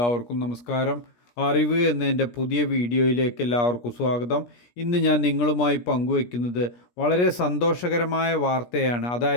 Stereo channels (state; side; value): late; right; 17 ms